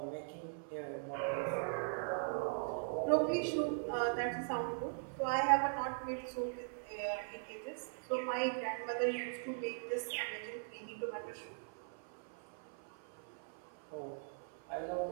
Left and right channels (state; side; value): silent; left; 51 dB below the other